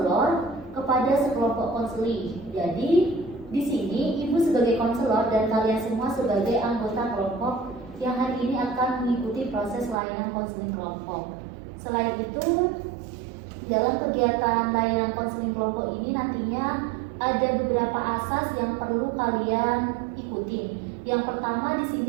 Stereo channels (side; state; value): left; drops out; at 10.0 s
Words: kepada sekelompok konseling. Jadi, di sini Ibu sebagai konselor dan kalian semua sebagai anggota kelompok yang hari ini akan mengikuti proses layanan konseling kelompok. Selain itu, dalam kegiatan layanan konseling kelompok ini nantinya ada beberapa asas yang perlu kalian ikuti. Yang pertama di